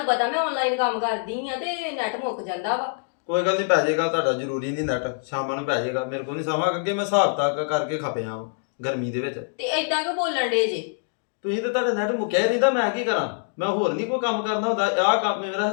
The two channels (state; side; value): silent; right; digital silence